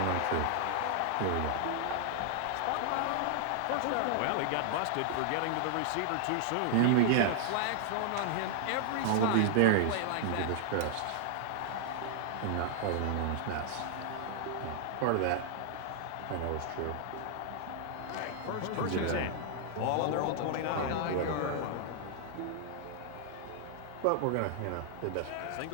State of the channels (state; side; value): different; both; correlation 0.00